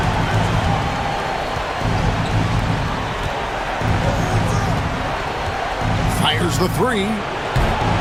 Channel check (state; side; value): identical; both; correlation 1.00